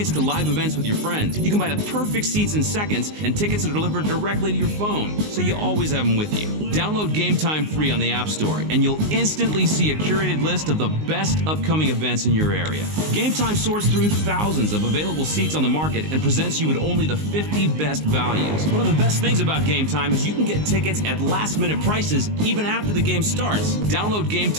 to live events with your friends. You can buy the perfect seats in seconds, and tickets are delivered directly to your phone, so you always have them with you. Download Game Time free on the App Store, and you'll instantly see a curated list of the best upcoming events in your area. Game Time sorts through thousands of available seats on the market and presents you with only the 50 best values. One of the best things about Game Time is you can get tickets at last-minute prices even after the game starts. Download Game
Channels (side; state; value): left; late; 19 ms